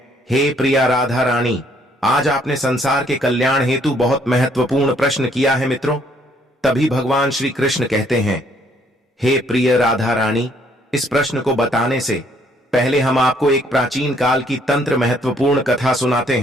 हे प्रिया राधा रानी, आज आपने संसार के कल्याण हेतु बहुत महत्वपूर्ण प्रश्न किया है मित्रों। तभी भगवान श्री कृष्ण कहते हैं, हे प्रिय राधा रानी, इस प्रश्न को बताने से पहले हम आपको एक प्राचीन काल की तंत्र महत्वपूर्ण कथा सुनाते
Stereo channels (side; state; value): both; normal; correlation 0.66